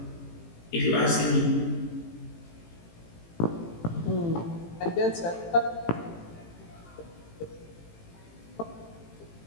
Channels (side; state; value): right; late; 18 ms